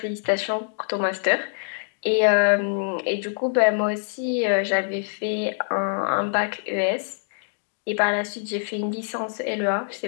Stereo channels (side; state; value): right; silent; digital silence